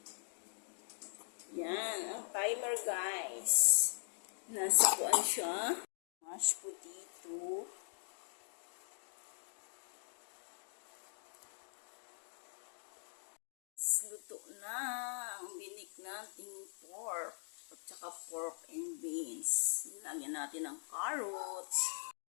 Yan. Ang timer guys. Nasa kuan siya. Mashed potato. Luto na ang binik nating pork at saka pork and beans. Lagyan natin ng carrots.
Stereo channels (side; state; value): right; silent; digital silence